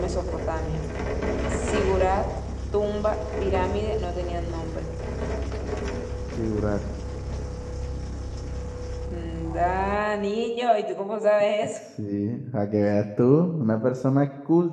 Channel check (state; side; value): identical; both; correlation 1.00